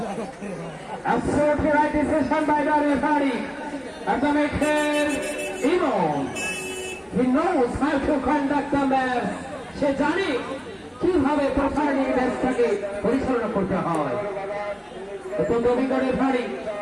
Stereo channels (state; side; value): identical; both; correlation 1.00